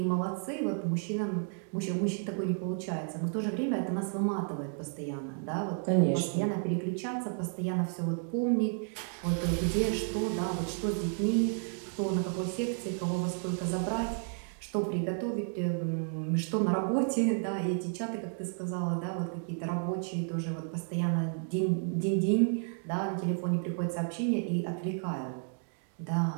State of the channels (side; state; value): left; silent; 56 dB below the other